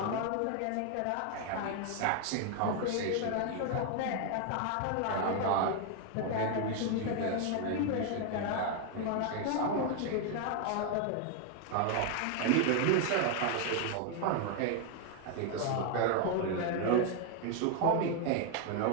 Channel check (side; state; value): both; different; correlation 0.01